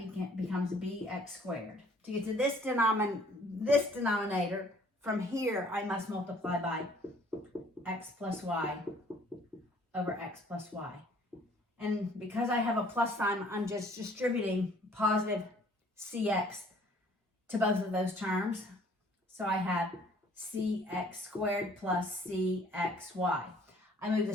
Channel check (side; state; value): both; normal; correlation 0.57